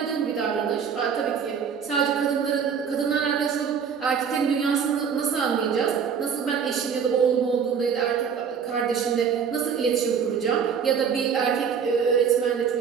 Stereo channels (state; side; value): quieter; left; 6.9 dB